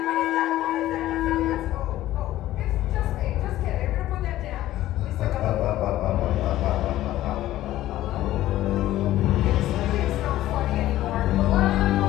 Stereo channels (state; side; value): quieter; right; 14.6 dB